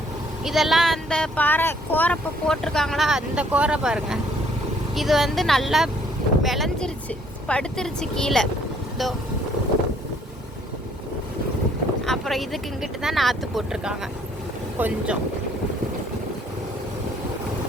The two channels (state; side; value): normal; both; correlation 0.63